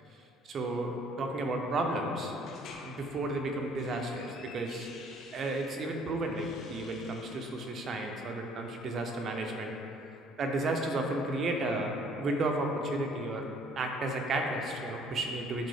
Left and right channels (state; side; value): normal; both; correlation 0.59